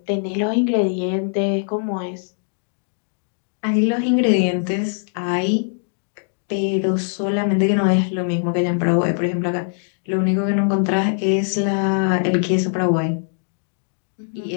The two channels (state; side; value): silent; right; digital silence